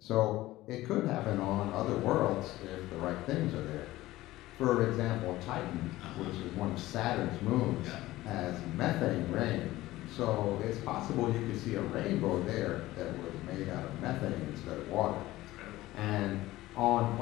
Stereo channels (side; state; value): right; quieter; 17.0 dB